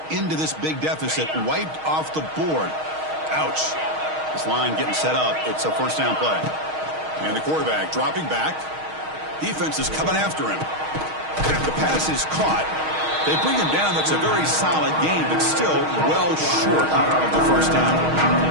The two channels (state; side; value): late; left; 6.4 ms